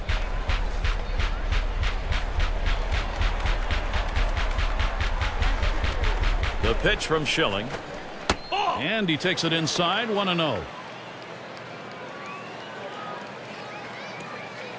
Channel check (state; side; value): identical; both; correlation 1.00